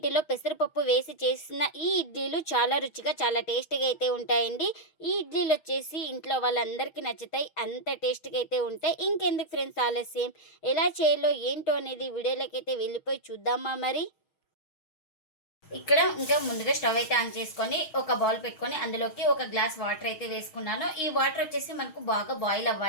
పెసరపప్పు వేసి చేసిన ఈ ఇడ్లీలు చాలా రుచిగా చాలా టేస్టీగా అయితే ఉంటాయండి. ఈ ఇడ్లీలు వచ్చేసి ఇంట్లో వాళ్ళందరికీ నచ్చుతాయి. అంత టేస్టీగా అయితే ఉంటాయి. ఇంకెందుకు ఫ్రెండ్స్ ఆలస్యం, ఎలా చేయాలో ఏంటో అనేది వీడియోలోకి అయితే వెళ్ళిపోయి చూద్దామా మరి. ఇక్కడ ఇంకా ముందుగా స్టవ్ అయితే ఆన్ చేసుకొని ఒక బౌల్ పెట్టుకొని అందులోకి ఒక గ్లాస్ వాటర్ అయితే వేసుకున్నాను. ఈ వాటర్ వచ్చేసి మనకు బాగా బాయిల్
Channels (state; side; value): late; right; 6.3 ms